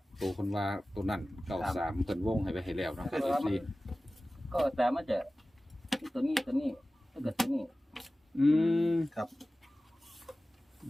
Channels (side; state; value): both; normal; correlation 0.96